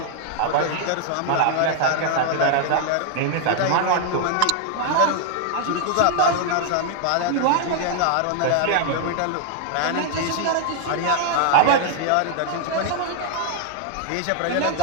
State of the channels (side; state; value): both; different; correlation 0.00